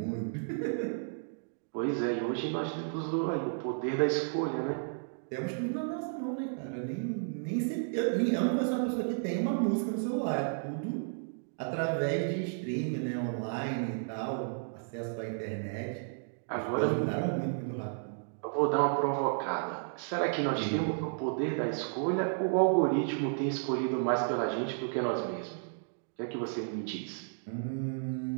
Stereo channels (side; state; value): left; silent; digital silence